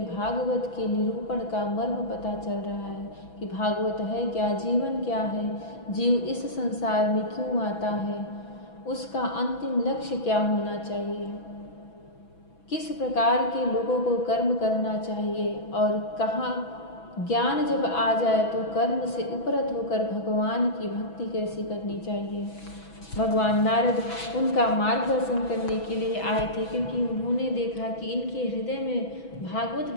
भागवत के निरूपण का मर्म पता चल रहा है कि भागवत है क्या, जीवन क्या है, जीव इस संसार में क्यों आता है, उसका अंतिम लक्ष्य क्या होना चाहिए, किस प्रकार के लोगों को कर्म करना चाहिए, और कहाँ ज्ञान जब आ जाए तो कर्म से उपरत होकर भगवान की भक्ति कैसी करनी चाहिए। भगवान नारद उनका मार्गदर्शन करने के लिए आए थे, क्योंकि उन्होंने देखा कि इनके हृदय में भागवत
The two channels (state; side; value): late; right; 6.1 ms